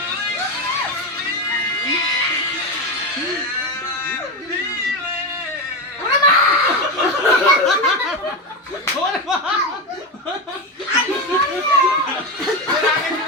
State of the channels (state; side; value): normal; both; correlation 0.15